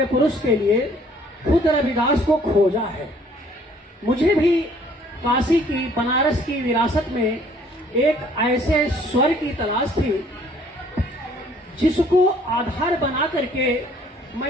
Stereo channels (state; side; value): normal; both; correlation 0.59